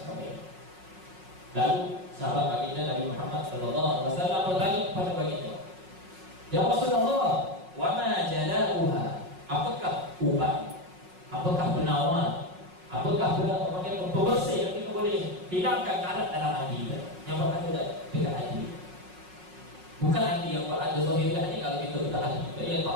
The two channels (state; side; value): late; left; 5.5 ms